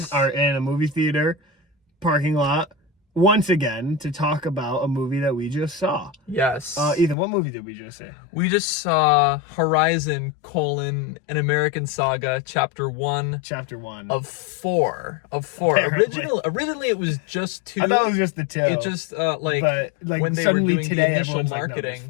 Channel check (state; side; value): drops out; right; at 7.2 s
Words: in a movie theater parking lot once again to talk about a movie that we just saw. Yes. Ethan, what movie did we just see? We just saw Horizon: An American Saga, Chapter 1. Chapter 1. Of 4. Originally it was just 2. I thought it was just the 2. It just, when they were doing the initial